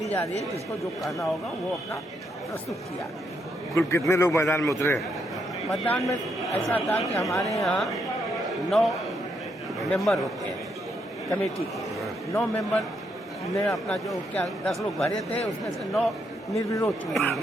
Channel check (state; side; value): normal; both; correlation 0.77